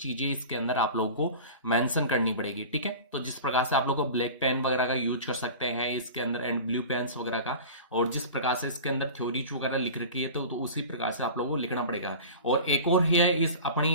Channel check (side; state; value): both; inverted; correlation -0.35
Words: इसके अंदर आप लोगों को मेंशन करनी पड़ेगी। ठीक है, तो जिस प्रकार से आप लोगों को ब्लैक पेन वगैरह का यूज कर सकते हैं इसके अंदर एंड ब्लू पेन्स वगैरह का, और जिस प्रकार से इसके अंदर थ्योरीज वगैरह लिख रखी है तो उसी प्रकार से आप लोगों को लिखना पड़ेगा। और एक और है इस